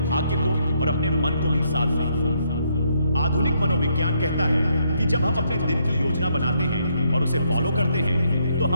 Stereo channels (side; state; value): both; inverted; correlation -0.73